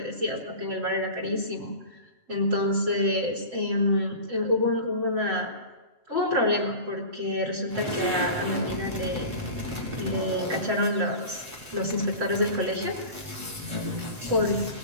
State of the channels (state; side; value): late; left; 7.8 ms